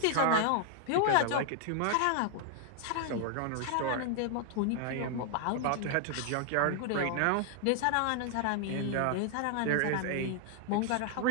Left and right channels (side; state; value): both; different; correlation 0.00